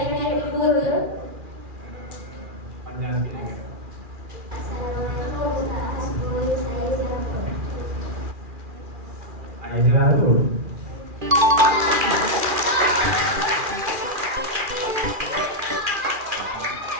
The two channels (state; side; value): late; left; 2.4 ms